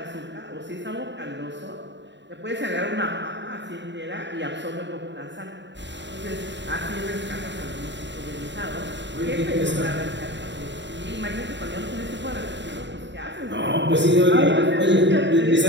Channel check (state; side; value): late; left; 0.52 ms